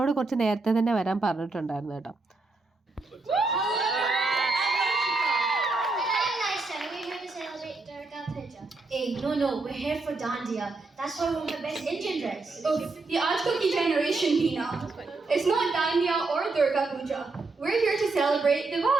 കുറച്ച് നേരത്തെ തന്നെ വരാൻ പറഞ്ഞിട്ടുണ്ടായിരുന്നു കേട്ടോ. Hey, no, we're here for Dandiya. That's why we're the best Indian dress. Oh, the Ajkoki generation, Pina. It's not Dandiya or Durga Puja. We're here to celebrate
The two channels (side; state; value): left; quieter; 3.6 dB